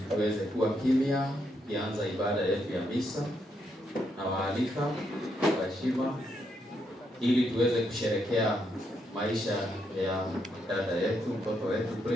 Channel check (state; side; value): normal; both; correlation 0.78